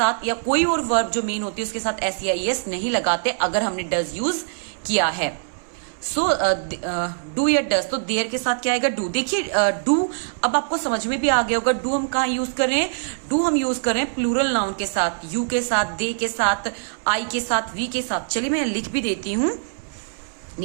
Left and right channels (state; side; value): silent; left; 63 dB below the other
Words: या कोई और वर्ब जो मेन होती है उसके साथ एस या ईएस नहीं लगाते अगर हमने डज यूज किया है। सो डू या डज, तो देयर के साथ क्या आएगा? डू। देखिए डू अब आपको समझ में भी आ गया होगा, डू हम कहाँ यूज कर रहे हैं? डू हम यूज कर रहे हैं प्लूरल नाउन के साथ, यू के साथ, दे के साथ, आई के साथ, वी के साथ। चलिए मैं लिख भी देती हूं,